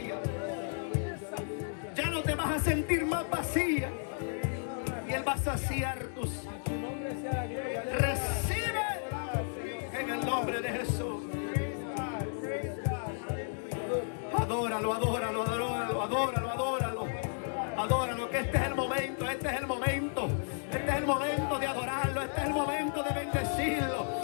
Ya no te vas a sentir más vacía. Y Él va a saciar tus. Recibe en el nombre de Jesús. Adóralo, que este es el momento, de adorarlo, este es el momento de bendecirlo,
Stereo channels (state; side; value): silent; right; digital silence